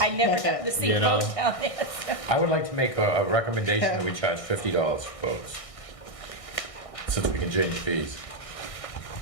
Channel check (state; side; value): late; right; 1.6 ms